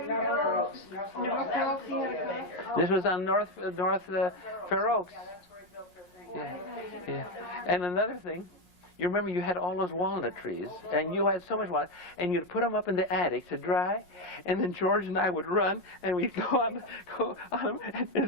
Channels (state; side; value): late; left; 5.5 ms